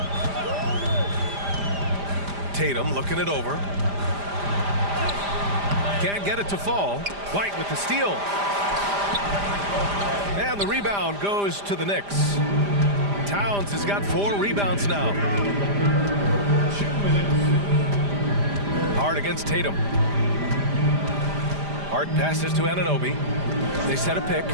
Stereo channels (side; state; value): left; late; 5.0 ms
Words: Tatum looking it over. Can't get it to fall. White with the steal. And the rebound goes to the Knicks. Towns has got 4 rebounds now. Hart against Tatum. Hart passes to Anunoby. They set a pick